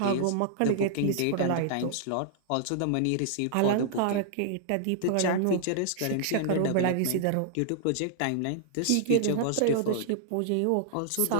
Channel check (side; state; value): both; different; correlation -0.01